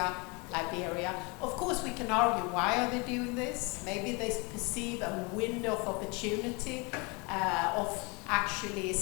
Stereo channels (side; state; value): right; quieter; 29.1 dB